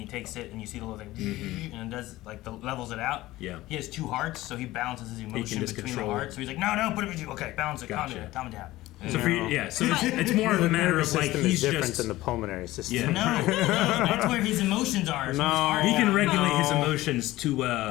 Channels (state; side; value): quieter; right; 17.3 dB